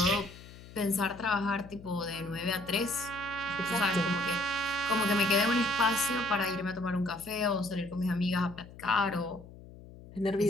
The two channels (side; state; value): left; noise; hum, 18 dB below the sound